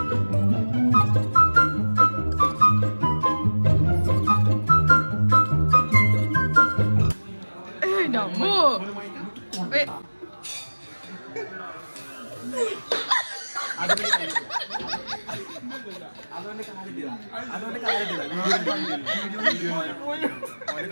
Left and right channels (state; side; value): inverted; both; correlation -1.00